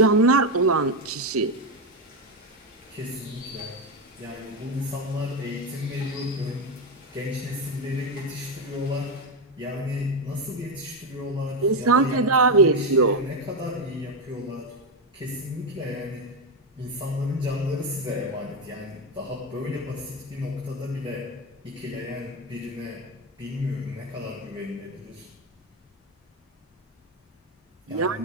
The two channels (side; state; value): both; normal; correlation 0.10